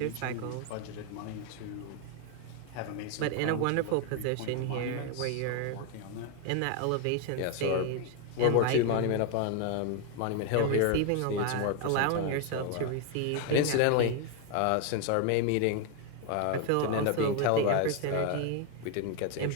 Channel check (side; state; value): both; different; correlation 0.01